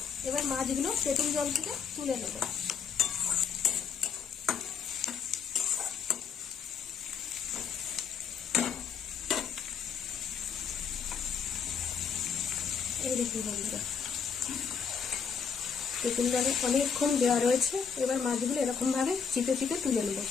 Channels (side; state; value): right; quieter; 6.5 dB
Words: এবার মাছগুলো তেঁতুল জল থেকে তুলে নেব। এই দেখুন বন্ধুরা, তেঁতুল জলে অনেকক্ষণ দেওয়া রয়েছে। এবার মাছগুলো এরকম ভাবে চিপে চিপে তুলে নেব।